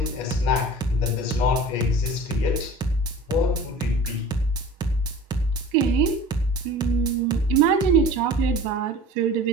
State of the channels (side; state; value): both; normal; correlation 0.40